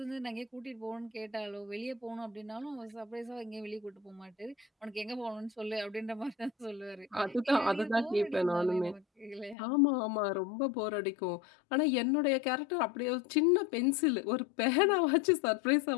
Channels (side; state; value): right; drops out; at 9.6 s